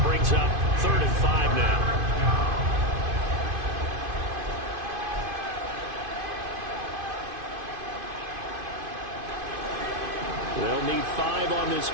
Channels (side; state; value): left; late; 2.5 ms